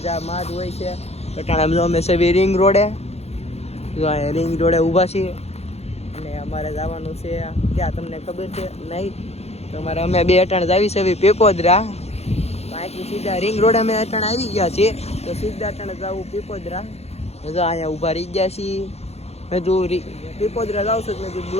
જ હોય છે. અટાણે અમે સવી રિંગ રોડે ઊભા છીએ અને અમારે જવાનું છે ક્યાં તમને ખબર છે નહીં? તમારે અમે બે અટાણે જાવી છે પીપોદરા. અહીંથી સીધા રિંગ રોડ અમે અટાણે આવી ગયા છીએ, તો સીધા અટાણે જવું પીપોદરા. જો અહીંયા ઊભા રહી ગયા છીએ. મેં તું પીપોદરા જાઉં છું, મેં તું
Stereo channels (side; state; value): right; late; 0.31 ms